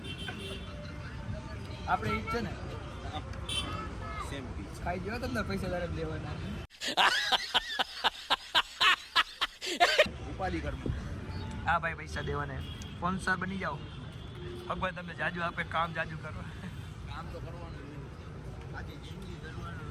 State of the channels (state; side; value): identical; both; correlation 1.00